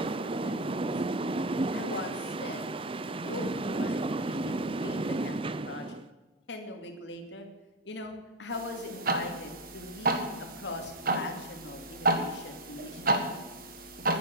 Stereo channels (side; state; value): both; normal; correlation 0.09